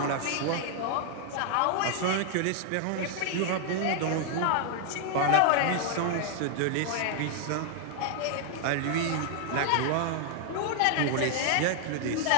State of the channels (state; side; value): different; both; correlation 0.00